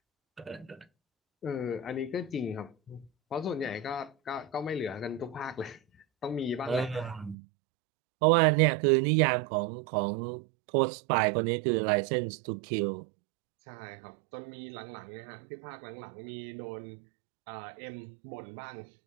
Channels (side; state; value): left; drops out; at 7.4 s